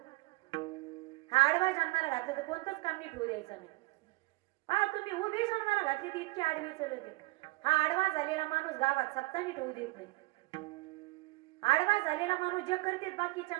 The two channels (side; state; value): left; quieter; 23.1 dB